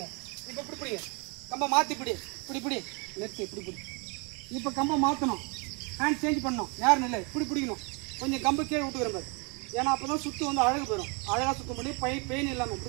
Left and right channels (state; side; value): quieter; left; 32.5 dB